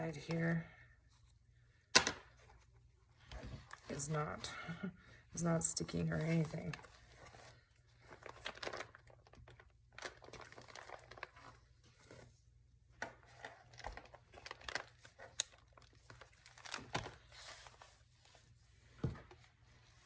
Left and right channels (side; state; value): both; identical; correlation 1.00